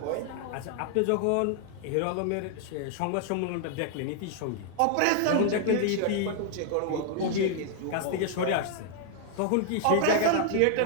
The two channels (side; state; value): both; different; correlation 0.00